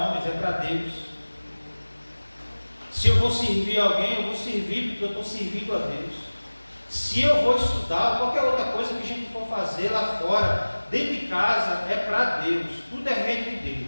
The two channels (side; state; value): both; inverted; correlation -1.00